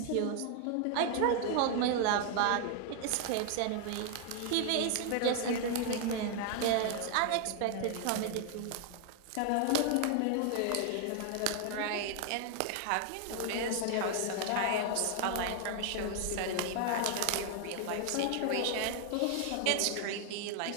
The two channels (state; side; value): different; both; correlation 0.00